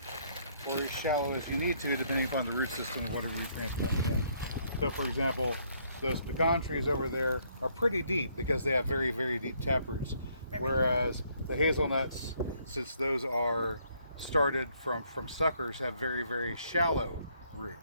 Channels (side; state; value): both; inverted; correlation -0.68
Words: or as shallow as you need to, depending upon the root system of whatever you're transplanting in. So, for example, those pecan trees over there are pretty deep because they have very, very deep taproots. Whereas the hazelnuts, since those are started from suckers, have very, very shallow